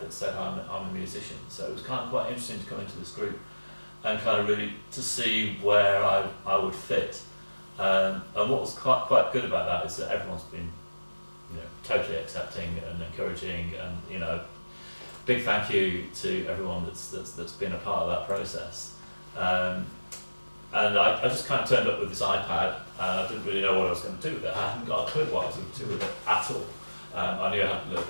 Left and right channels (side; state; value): both; inverted; correlation -1.00